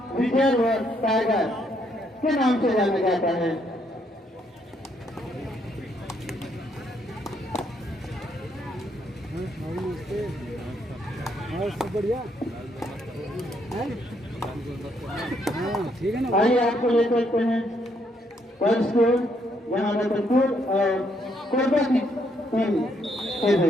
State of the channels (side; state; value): both; normal; correlation 0.73